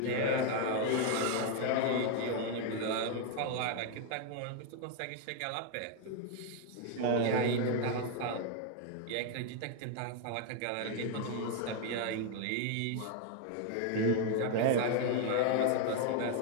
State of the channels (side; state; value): both; different; correlation 0.00